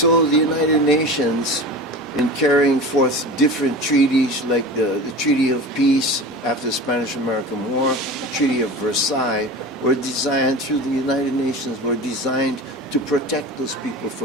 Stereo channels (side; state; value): both; normal; correlation 0.33